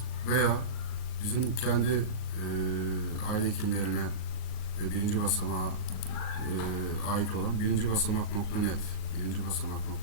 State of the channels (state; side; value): late; right; 38 ms